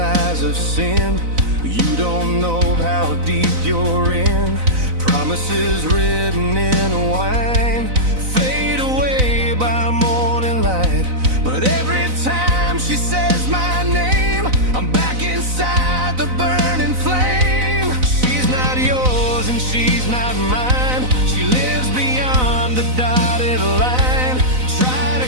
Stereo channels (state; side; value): late; left; 4.0 ms